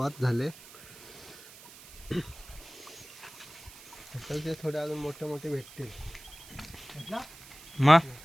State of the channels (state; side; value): noise; right; hiss, 18 dB below the sound